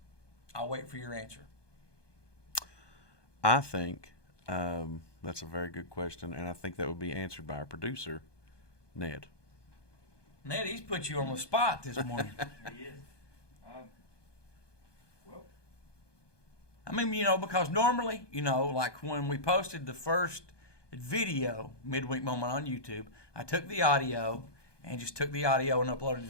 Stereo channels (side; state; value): right; late; 1.2 ms